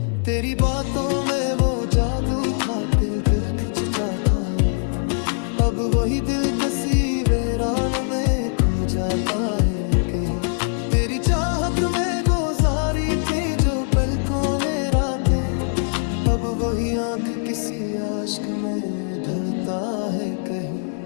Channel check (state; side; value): silent; right; digital silence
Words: तेरी बातों में वो जादू था, दिल खिंचता था, अब वही दिल कसी वीरान में खो जाता है कहीं। तेरी चाहत में गुजारी थी जो पलकों में रातें, अब वो वही आंख किसी आशिक में ढलता है कहीं।